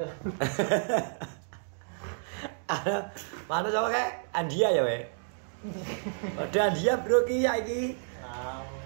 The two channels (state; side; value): silent; left; digital silence